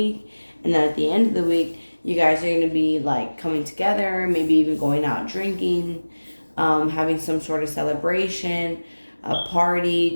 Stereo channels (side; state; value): both; inverted; correlation -1.00